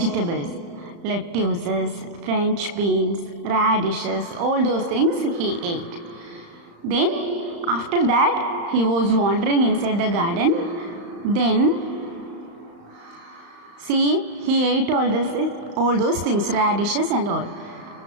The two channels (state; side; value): late; left; 35 ms